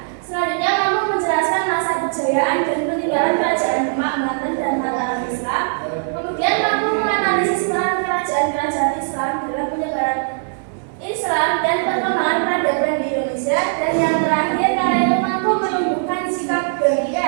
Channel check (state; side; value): silent; left; digital silence